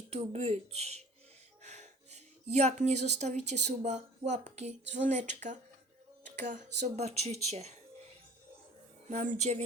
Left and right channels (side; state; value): both; normal; correlation 0.47